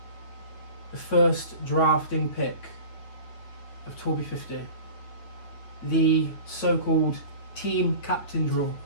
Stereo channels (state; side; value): late; right; 9.5 ms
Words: the first drafting pick of Torbi 50, the so-called team captain draw,